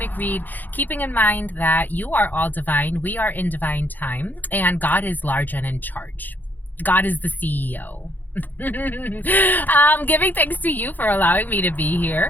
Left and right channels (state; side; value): late; right; 0.086 ms